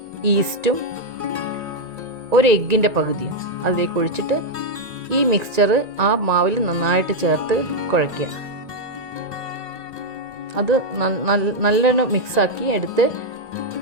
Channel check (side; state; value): left; late; 1.8 ms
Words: ഈസ്റ്റും ഒരു എഗ്ഗിൻ്റെ പകുതിയും അതിലേക്ക് ഒഴിച്ചിട്ട് ഈ മിക്സ്ചർ ആ മാവിൽ നന്നായിട്ട് ചേർത്ത് കുഴയ്ക്കുക. അത് നല്ലോണം മിക്സാക്കി എടുത്ത്